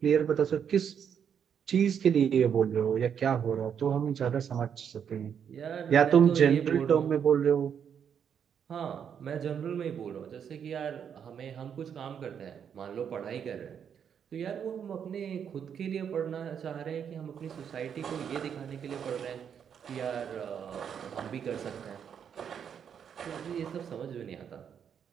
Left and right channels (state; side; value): quieter; left; 7.9 dB